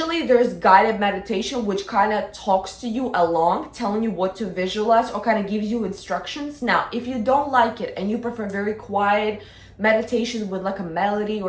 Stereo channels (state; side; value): identical; both; correlation 1.00